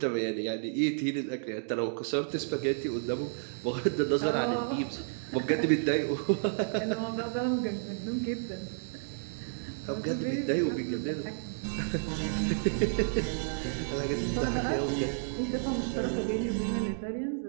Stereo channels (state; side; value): silent; left; digital silence